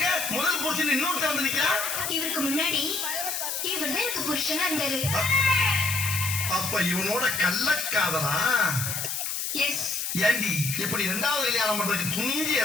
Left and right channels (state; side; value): noise; left; hiss, 2 dB below the sound